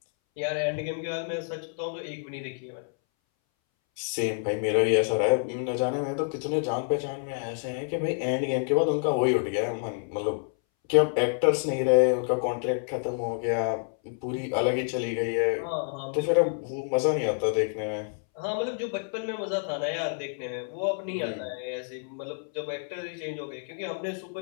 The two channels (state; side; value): silent; right; 59 dB below the other